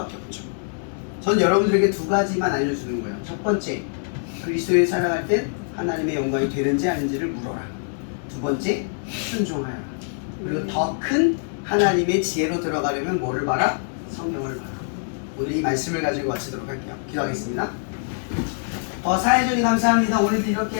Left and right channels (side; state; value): right; silent; digital silence